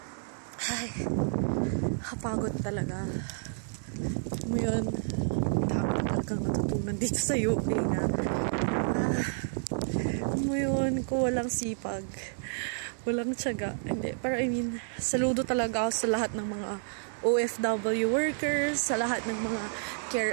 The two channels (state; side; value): silent; left; digital silence